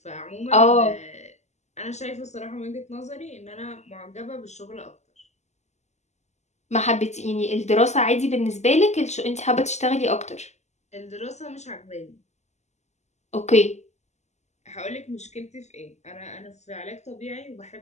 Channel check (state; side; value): late; right; 0.33 ms